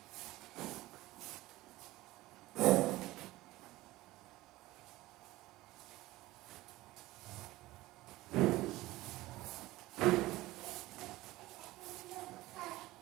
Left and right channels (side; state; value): left; quieter; 18.1 dB